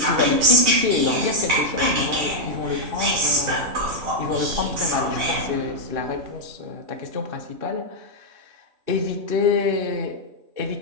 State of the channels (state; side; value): late; left; 2.6 ms